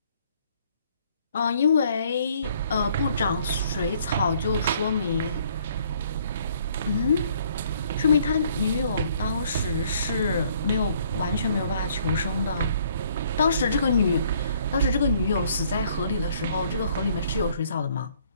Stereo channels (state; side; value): inverted; both; correlation -0.63